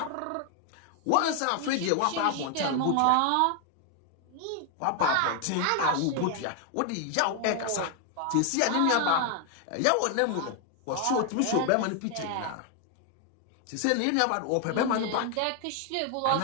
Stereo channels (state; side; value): different; both; correlation 0.00